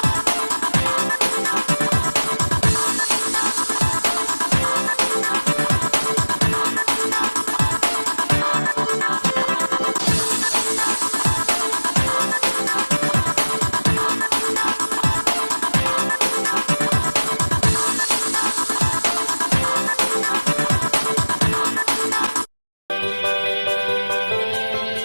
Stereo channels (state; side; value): inverted; both; correlation -1.00